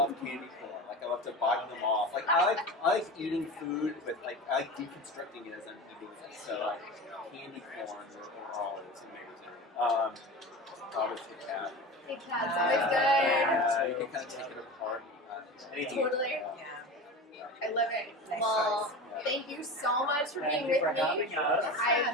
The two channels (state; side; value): normal; both; correlation 0.30